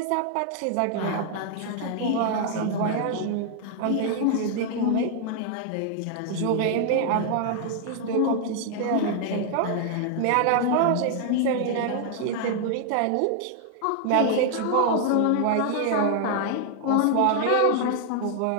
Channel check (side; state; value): both; different; correlation 0.00